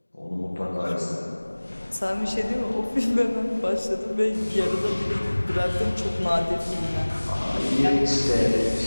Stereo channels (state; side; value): inverted; both; correlation -1.00